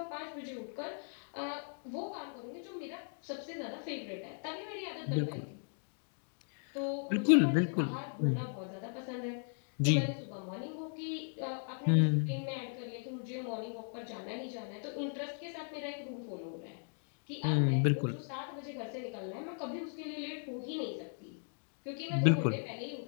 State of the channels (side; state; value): right; silent; 53 dB below the other